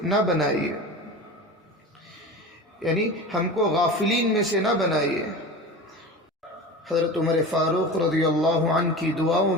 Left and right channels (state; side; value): normal; both; correlation 0.32